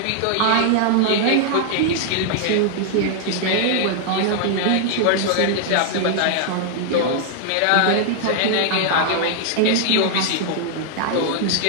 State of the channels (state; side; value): different; both; correlation 0.00